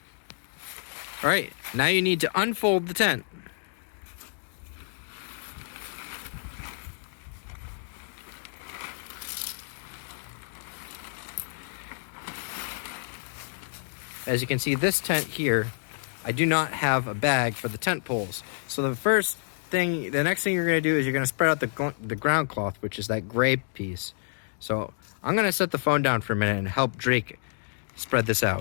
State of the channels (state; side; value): silent; right; digital silence